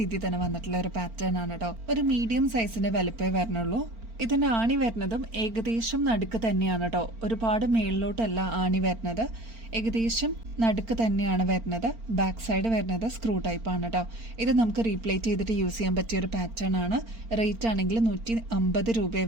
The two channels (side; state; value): left; late; 4.4 ms